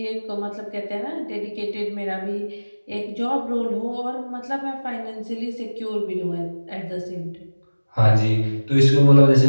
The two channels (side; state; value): both; inverted; correlation -1.00